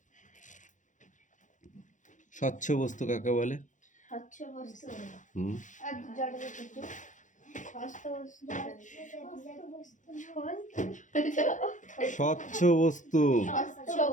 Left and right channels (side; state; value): right; late; 0.36 ms